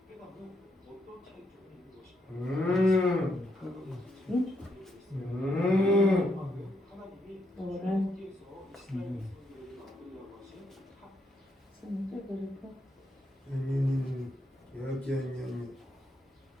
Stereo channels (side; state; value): both; normal; correlation 0.78